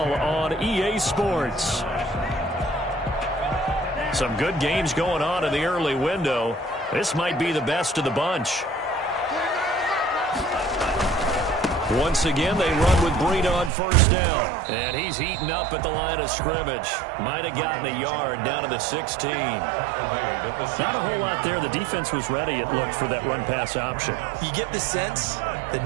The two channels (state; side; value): drops out; left; at 13.7 s